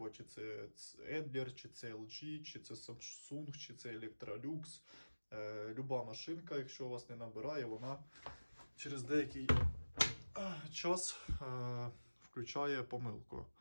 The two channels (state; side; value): inverted; both; correlation -1.00